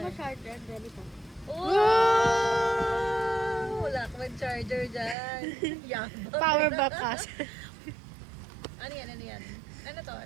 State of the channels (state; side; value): drops out; left; at 5.2 s